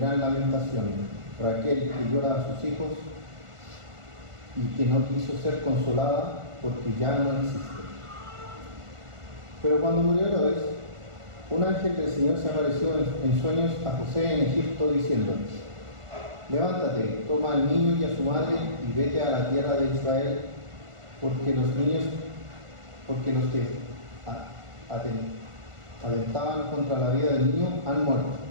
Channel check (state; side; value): late; left; 1.5 ms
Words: lamentación, Raquel que llora a sus hijos y que no quiso ser consolada porque ya no existe. Pero cuando murió Herodes, un ángel del Señor se apareció en sueños a José en Egipto diciendo: levántate, toma al niño y a su madre y vete a la tierra de Israel, porque los que atentaban contra la vida del niño han muerto.